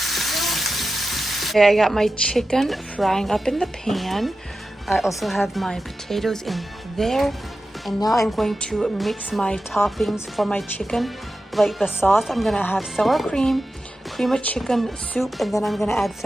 Okay, I got my chicken frying up in the pan. I also have my potatoes in there. And now I'm going to mix my toppings for my chicken. Like the sauce, I'm gonna have sour cream, cream of chicken soup, and then I'm gonna add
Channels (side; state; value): both; normal; correlation 0.92